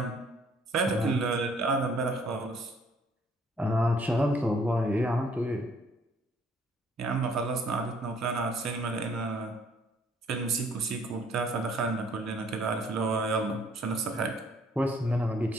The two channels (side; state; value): both; normal; correlation 0.61